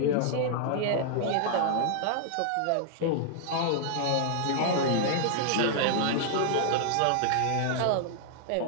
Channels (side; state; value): both; different; correlation -0.01